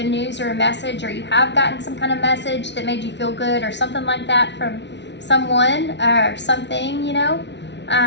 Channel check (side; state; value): right; late; 0.51 ms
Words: news or a message, or you have gotten some kind of message that made you feel good or something like that from someone or something,